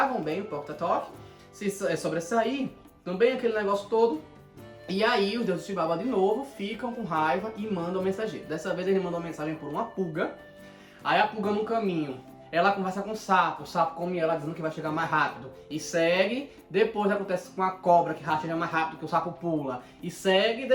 bem o Poctatop, se sobressair, também aquele negócio todo. E aí os deuses de Xibalba de novo ficam com raiva e mandam mensageiro. Dessa vez ele mandou mensagem por uma pulga. Aí a pulga no caminho, ela conversa com o sapo come ela dizendo que vai chegar mais rápido. E segue, depois acontece com a cobra que chega mais rápido que o sapo pula. E segue,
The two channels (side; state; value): both; identical; correlation 1.00